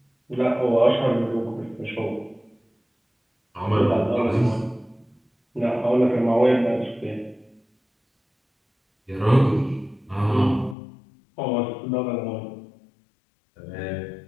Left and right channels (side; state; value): right; drops out; at 10.8 s